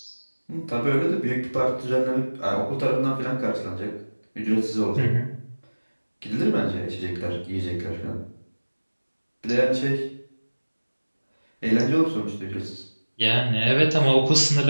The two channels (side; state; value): both; inverted; correlation -1.00